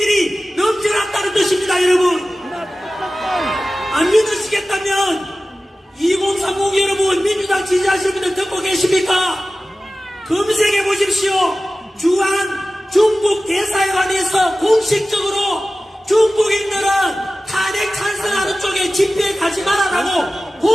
넘쳐났다는 뜻입니다. 여러분, 안 믿으시겠다면 2030 여러분, 민주당 지지하시는 분들 듣고 계십니까? 검색해 보십시오. 주한 중국 대사관에서 공식적으로 중국인들은 탄핵 찬성하는 쪽에 집회에 가지 말아라고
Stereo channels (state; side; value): normal; both; correlation 0.96